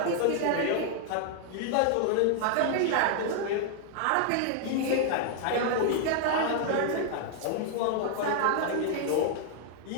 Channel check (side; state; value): both; different; correlation 0.00